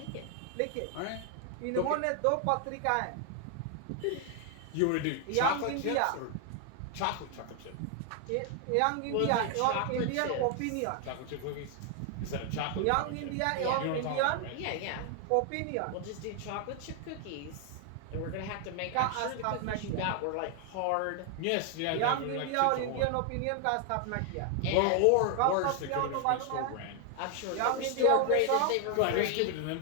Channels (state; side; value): different; both; correlation 0.00